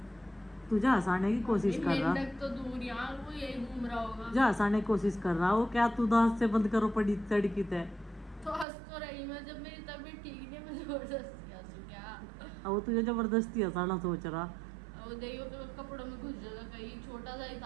तुझे हंसाने की कोशिश कर रहा, तो दूर यहाँ वो यही घूम रहा होगा। जा हंसाने की कोशिश कर रहा हो क्या? तू दांत से बंद करो पड़ी तड़की तय। तो हंस तो रही मैं, जब मेरी तबीयत ठीक नहीं, मैं जबरदस्ती हंसू क्या? अब वो तुझे जबरदस्ती हंसाना सोच रहा। वो देखियो तो कपड़ों में घुस जाएगा कहीं, छोटा सा ही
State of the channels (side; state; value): left; drops out; at 8.7 s